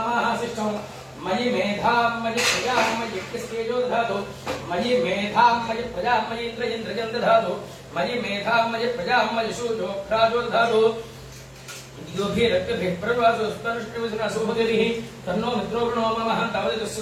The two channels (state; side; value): identical; both; correlation 1.00